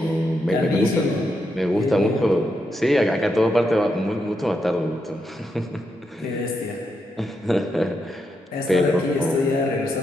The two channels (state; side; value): normal; both; correlation 0.83